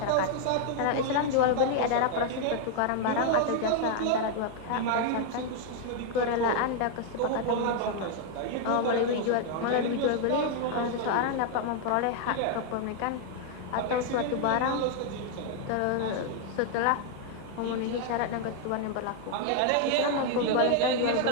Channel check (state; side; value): different; both; correlation 0.00